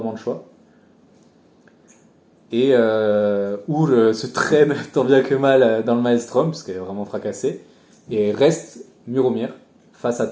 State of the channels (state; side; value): identical; both; correlation 1.00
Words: le choix. Et Our se traîne tant bien que mal dans le Maelstrom, parce qu'elle est vraiment fracassée, et reste Muromir, face à